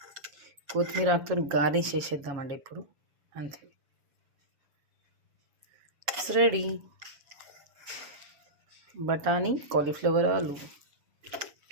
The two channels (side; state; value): left; late; 7.2 ms